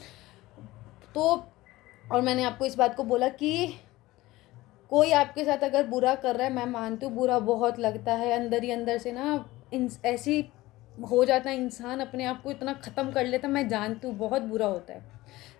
तो, और मैंने आपको इस बात को बोला कि कोई आपके साथ अगर बुरा कर रहा है, मैं मानती हूँ बुरा बहुत लगता है अंदर ही अंदर से ना, ऐसी हो जाता है इंसान अपने आप को इतना ख़त्म कर लेता, मैं जानती हूँ बहुत बुरा होता है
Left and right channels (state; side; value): quieter; right; 18.4 dB